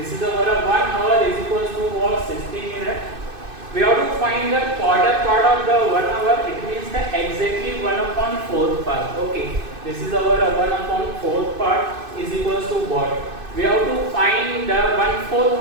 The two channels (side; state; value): left; late; 2.6 ms